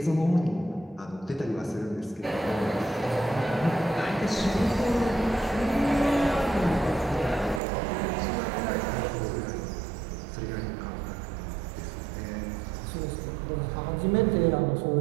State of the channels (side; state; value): left; drops out; at 7.6 s